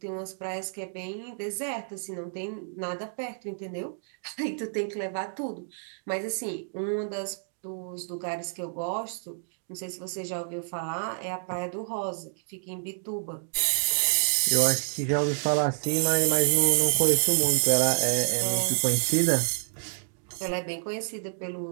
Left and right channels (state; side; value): silent; left; digital silence